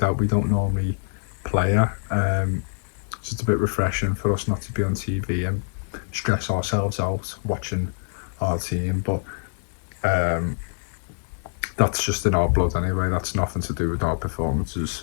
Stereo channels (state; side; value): silent; right; digital silence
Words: we don't normally play at. So it's a bit refreshing for us not to be on TV and stress ourselves out watching our team, but um, that's just in our blood anyway. That's nothing to do with our performances